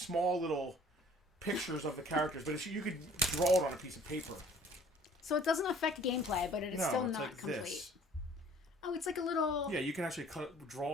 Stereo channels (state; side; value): normal; both; correlation 0.54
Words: little pictures of the characters, but you could draw it on a piece of paper. So it doesn't affect gameplay, but it is No, still it's not like complete. this. Oh, it's like a little... Yeah, you can actually